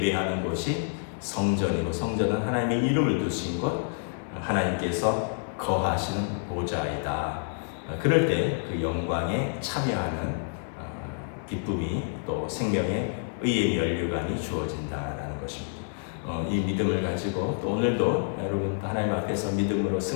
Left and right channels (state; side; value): silent; right; digital silence